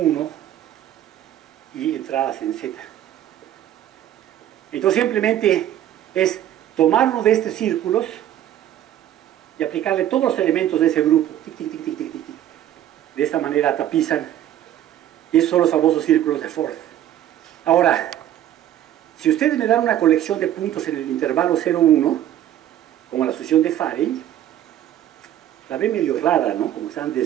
y entradas en Z. Entonces simplemente es tomar uno de estos círculos y aplicarle todos los elementos de ese grupo. Tic, tic, tic, tic, tic, tic. De esta manera tapizan, y esos son los famosos círculos de Ford. Ahora, si ustedes me dan una colección de puntos en el intervalo 0,1, como la sucesión de Farey, la ven medio rara, ¿no? Como están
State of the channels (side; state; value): left; quieter; 11.7 dB